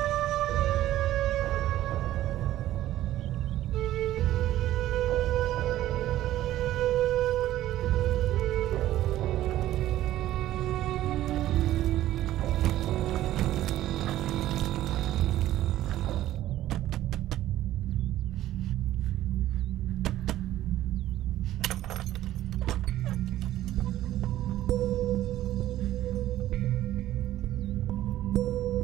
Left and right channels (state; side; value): quieter; left; 13.9 dB